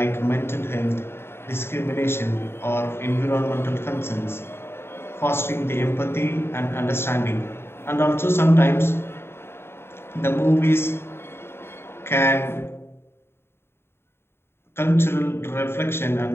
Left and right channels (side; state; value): right; late; 0.11 ms